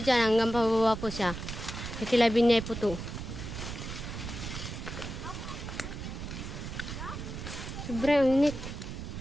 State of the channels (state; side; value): noise; right; rumble, 7 dB below the sound